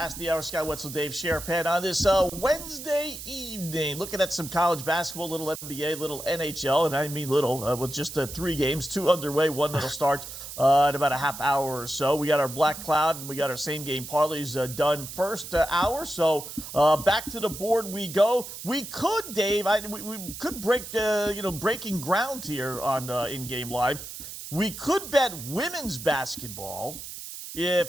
the hour. Scott Wetzel, Dave Sharapan on this Wednesday evening. Looking at some college basketball, little NBA, little NHL, and I mean little, with just 3 games, 2 underway, one that'll start in about a half hour or so. We got our Black Cloud and we got our same game parlays done first hour. So back to the board we go. We could, Dave, we could break breaking ground here on In Game Live. We could bet women's basketball if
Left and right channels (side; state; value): right; noise; hiss, 10 dB below the sound